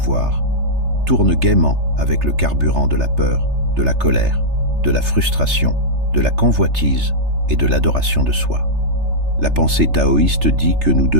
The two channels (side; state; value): left; late; 3.3 ms